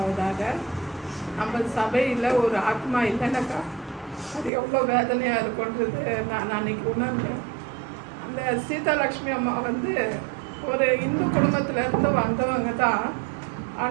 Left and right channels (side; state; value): left; drops out; at 4.5 s